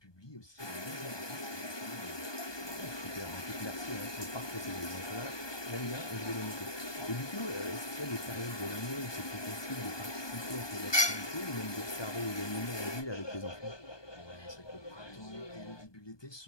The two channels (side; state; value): right; late; 1.2 ms